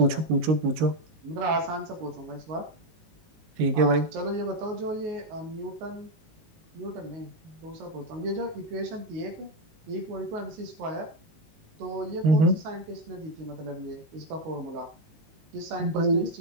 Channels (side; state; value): left; late; 19 ms